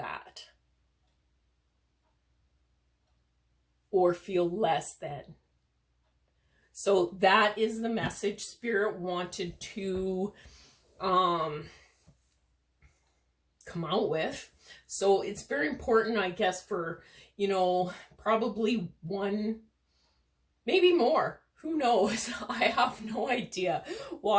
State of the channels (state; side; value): identical; both; correlation 1.00